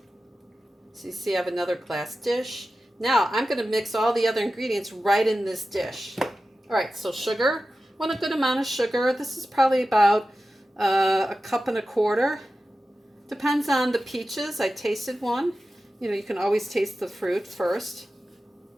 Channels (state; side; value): normal; both; correlation 0.93